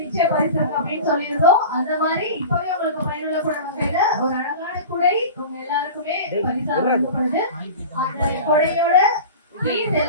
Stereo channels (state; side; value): inverted; both; correlation -0.34